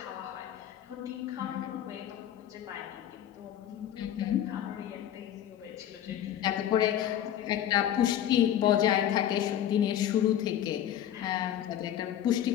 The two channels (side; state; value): right; quieter; 10.8 dB